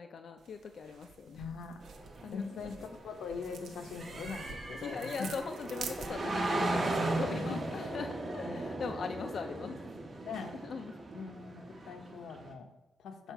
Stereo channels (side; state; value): both; normal; correlation 0.82